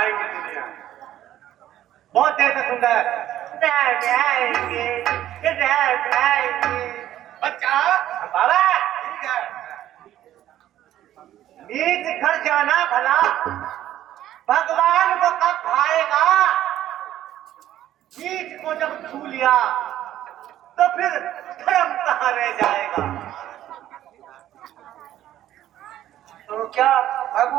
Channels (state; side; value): quieter; left; 12.6 dB